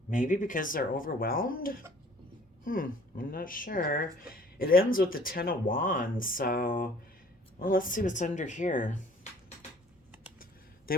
Maybe because they're overwhelmed? I'm not sure. It ends with the Ten of Wands, so well, let's see what's under here. They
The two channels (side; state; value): both; normal; correlation 0.53